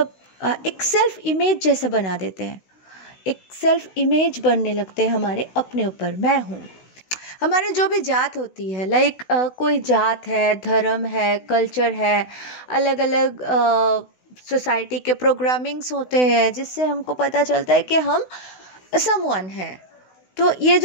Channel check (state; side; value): late; right; 16 ms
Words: एक सेल्फ इमेज जैसा बना देते हैं। एक सेल्फ इमेज बनने लगते हैं हमारे अपने ऊपर। मैं हूँ, हमारे जो भी जात होती है, कोई जात है, धर्म है, कल्चर है, अलग अलग सोसाइटी के प्रोग्रामिंग्स होते हैं, जिससे हमको पता चलता है कि हम समवन हैं। तो ये